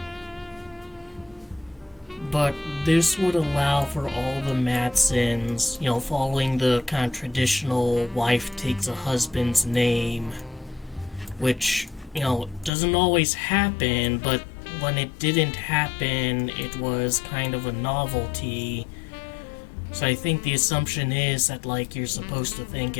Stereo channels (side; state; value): right; drops out; at 12.7 s